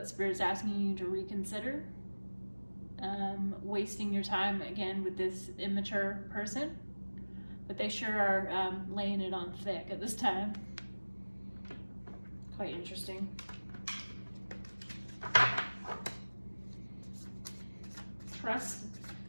Spirit is asking you to reconsider. Wasting your time again with this immature person, but they sure are laying it on thick at this time. Quite interesting.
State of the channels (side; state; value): both; inverted; correlation -1.00